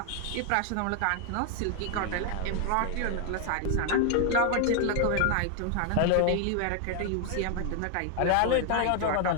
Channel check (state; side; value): different; both; correlation 0.00